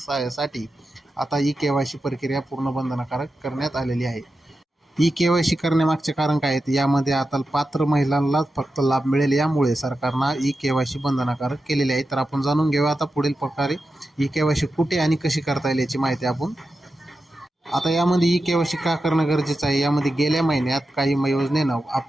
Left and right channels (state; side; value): normal; both; correlation 0.91